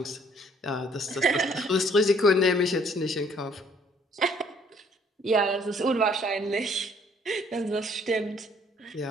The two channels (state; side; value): normal; both; correlation 0.62